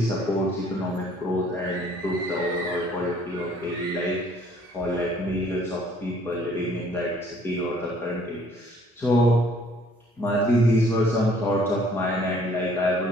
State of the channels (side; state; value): both; normal; correlation 0.59